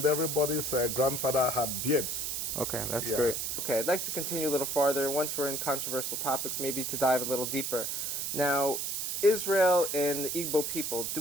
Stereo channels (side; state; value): right; noise; hiss, 2 dB below the sound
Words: everybody's grandfather had beards. Okay, that's great. Okay, I'd like to continue a little farther. Once we're in controversial topics, maybe to dive a little deeper. Now, Israel and the Igbo people,